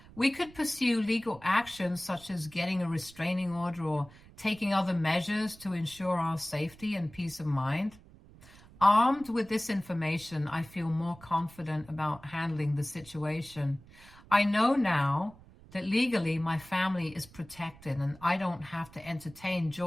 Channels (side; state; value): right; noise; rumble, 22 dB below the sound